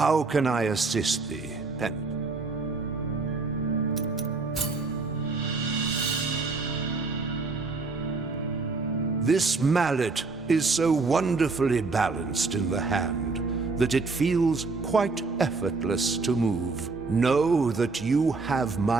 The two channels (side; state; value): left; quieter; 4.0 dB